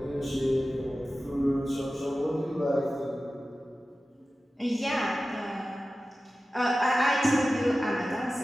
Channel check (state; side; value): normal; both; correlation 0.95